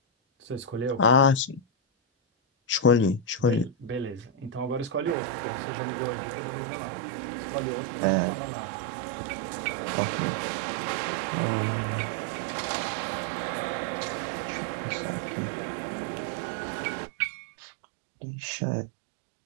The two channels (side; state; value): left; drops out; at 5.2 s